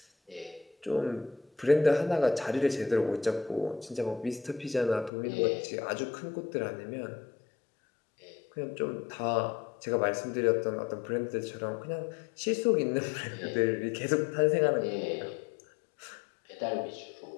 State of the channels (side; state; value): right; drops out; at 5.1 s